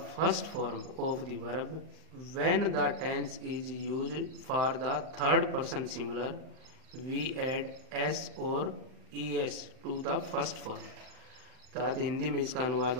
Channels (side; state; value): left; late; 39 ms